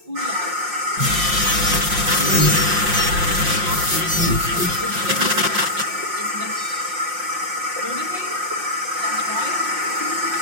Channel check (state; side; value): late; left; 5.6 ms